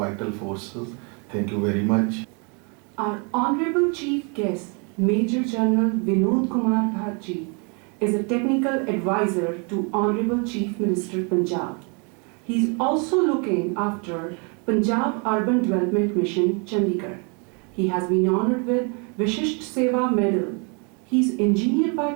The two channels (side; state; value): left; quieter; 35.1 dB